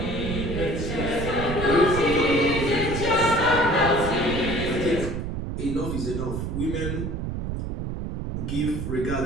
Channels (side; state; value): right; noise; rumble, 4 dB below the sound